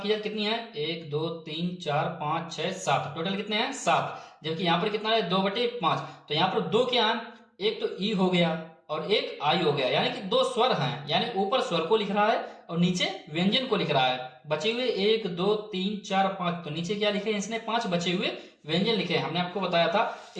की जाए कितनी है 1 2 3 4 5 6 7, टोटल कितने हैं 7, जबकि यहां पर कितना है 2/5, तो यहां पर 2 क्या है, एक तो ई हो गया और एक आई हो गया, यानी कि 2 स्वर हैं, यानी ऊपर स्वर को लिख रहा है और नीचे व्यंजन को लिख रहा है। बचे हुए 1 2 3 4 5, तो नीचे क्या लिखे इसने 5 बचे हुए व्यंजन लिखे हैं। हमने आपको बताया था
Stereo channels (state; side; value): identical; both; correlation 1.00